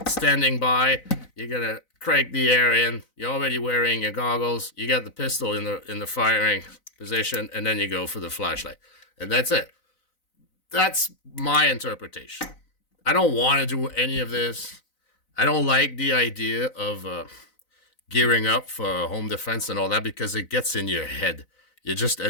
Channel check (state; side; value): late; right; 4.0 ms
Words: standing by. You're going to crank the air in. You're already wearing your goggles. You got the pistol in the firing position, and then you go for the flashlight, and that's it. That's my interpretation. I don't want to do any of this. I don't like the idea of gearing up for home defense and all that because it gets in your head. You